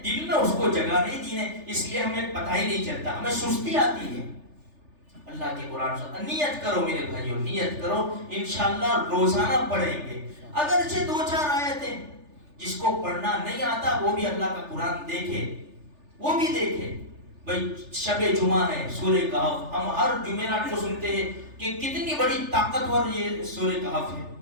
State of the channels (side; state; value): left; late; 3.4 ms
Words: دل میں اس کو جگہ نہیں دی ہے، اس لیے ہمیں پتہ ہی نہیں چلتا، ہمیں سستی آتی ہے. اللہ کے قرآن سے نیت کرو میرے بھائیوں، نیت کرو، انشاءاللہ روزانہ پڑھیں گے. اگرچہ 2-4 آیتیں، جس کو پڑھنا نہیں آتا وہ بھی اللہ کا قرآن دیکھے، وہ بھی دیکھے. بھائی شب جمعہ ہے، سورہ کہف، ہم ہر جمعرات کو سنتے ہیں کہ کتنی بڑی طاقتور یہ سورہ کہف